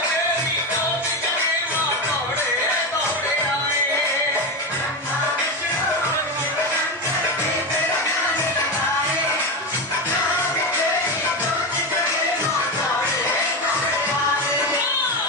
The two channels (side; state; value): both; normal; correlation 0.16